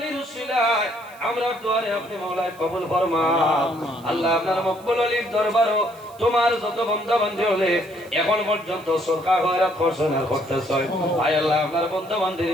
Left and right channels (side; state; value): right; noise; hiss, 25 dB below the sound